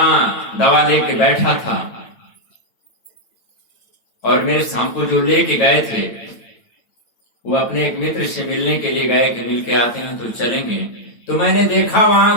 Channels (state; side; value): late; right; 9.1 ms